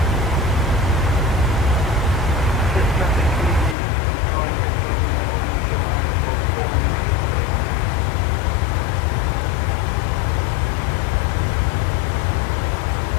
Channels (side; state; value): right; drops out; at 3.8 s